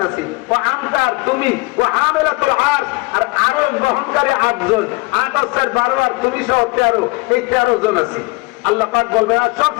আছি। ও আমতার তুমি, ও হামেলাতুল আরশ, আর আরশ বহনকারী 8 জন, 8 আর 12 আর তুমি সহ 13, এই 13 জন আছি। আল্লাহ পাক বলবেন আর সব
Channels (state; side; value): quieter; right; 25.3 dB